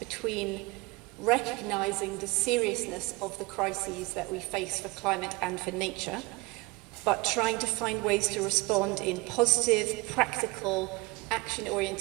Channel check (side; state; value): left; quieter; 24.4 dB